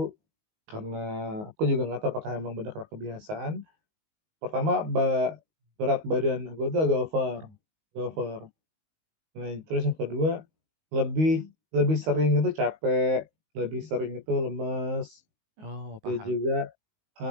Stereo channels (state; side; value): late; left; 19 ms